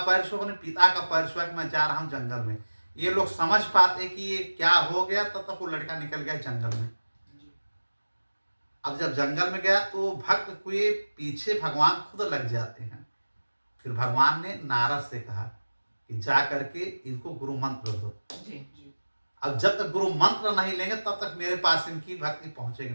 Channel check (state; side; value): inverted; both; correlation -1.00